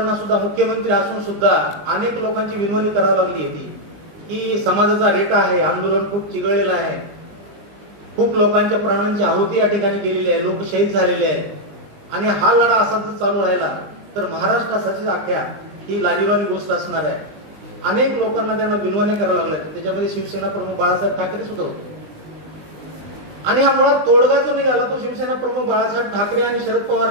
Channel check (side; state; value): left; late; 20 ms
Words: सुद्धा मुख्यमंत्री असून सुद्धा अनेक लोकांची विनवणी करावी लागली होती की समाजाचा रेटा आहे, आंदोलन खूप चिघळलेलं आहे, खूप लोकांच्या प्राणांची आहुती या ठिकाणी गेलेली आहे, लोक शहीद झालेले आहेत आणि हा लढा असाच चालू राहिला तर महाराष्ट्रासाठी अख्ख्या ही लाजिरवाणी गोष्ट असणार आहे. अनेक लोकांना त्यांना विनवण्या कराव्या लागल्या. त्याच्यामध्ये शिवसेना प्रमुख बाळासाहेब ठाकरे सुद्धा होते आणि हा मुळात तोडगा जो निघाला तो शिवसेना प्रमुख बाळासाहेब ठाकरे आणि शरद